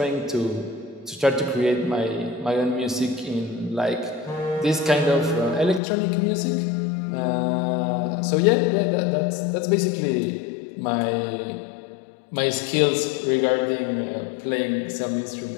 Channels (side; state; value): right; drops out; at 5.8 s